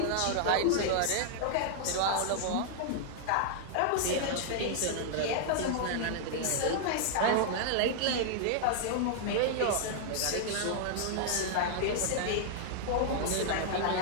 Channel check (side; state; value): both; different; correlation -0.01